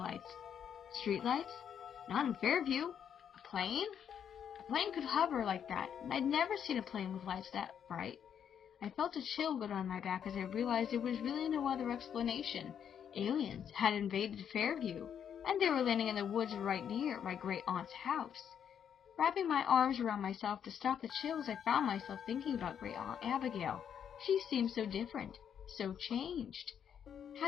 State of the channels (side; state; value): right; quieter; 8.4 dB